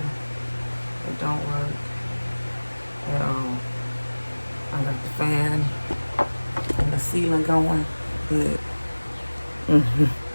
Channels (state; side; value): inverted; both; correlation -1.00